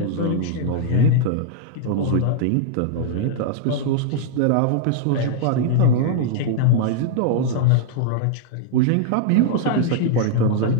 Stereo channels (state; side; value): different; both; correlation -0.01